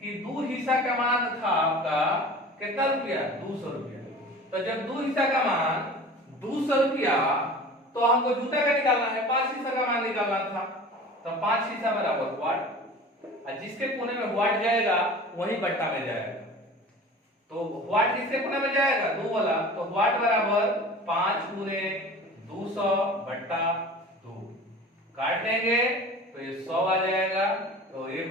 कि 2 हिस्सा का मान था आपका कितना रुपया, 200 रुपया। तो जब 2 हिस्सा का मान 200 रुपया, तो हमको जूता का निकालना है, 5 हिस्सा का मान निकालना था, तो 5 हिस्सा बराबर वाट, और जिसके कोने में वाट जाएगा वही बट्टा में जाएगा। तो वाट किसके कोने में जाएगा, 2 वाला, तो वाट बराबर 5 गुने 200 बट्टा 2। काट लेंगे तो ये 100 आ जाएगा, तो ये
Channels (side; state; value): both; normal; correlation 0.39